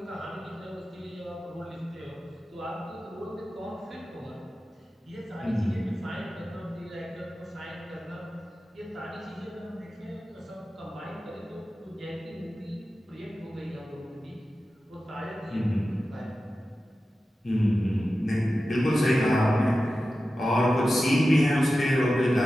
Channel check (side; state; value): both; normal; correlation 0.93